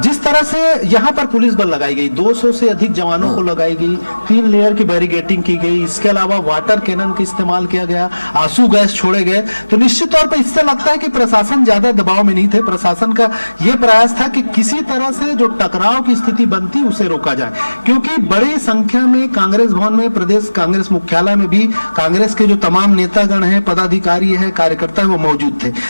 जिस तरह से यहाँ पर पुलिस बल लगाई गई, 200 से अधिक जवानों को लगाई गई, 3 लेयर की बैरिगेटिंग की गई, इसके अलावा वाटर कैनन का इस्तेमाल किया गया, आंसू गैस छोड़े गए, तो निश्चित तौर पर इससे लगता है कि प्रशासन ज्यादा दबाव में नहीं थे। प्रशासन का यह प्रयास था कि किसी तरह से जो टकराव की स्थिति बनती उसे रोका जाए, क्योंकि बड़ी संख्या में कांग्रेस भवन में, प्रदेश कांग्रेस मुख्यालय में भी कांग्रेस के जो तमाम नेतागण हैं, पदाधिकारी है, कार्यकर्ता है, वो मौजूद थे।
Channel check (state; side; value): inverted; both; correlation -1.00